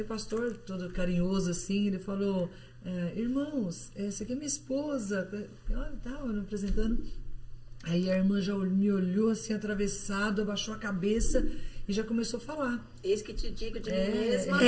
o pastor, todo carinhoso assim, ele falou: irmãos, essa aqui é minha esposa. Tava me apresentando. Aí a irmã já me olhou assim, atravessado, abaixou a cabeça e já começou a falar. Eis que te digo de mim mesma.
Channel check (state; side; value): identical; both; correlation 1.00